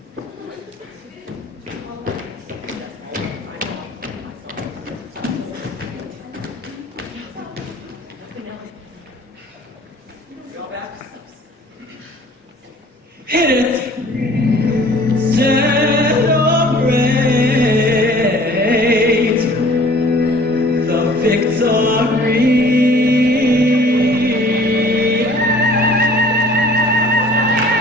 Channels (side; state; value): both; normal; correlation 0.51